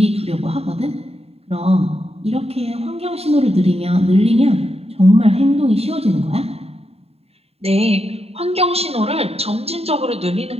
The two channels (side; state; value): left; late; 0.29 ms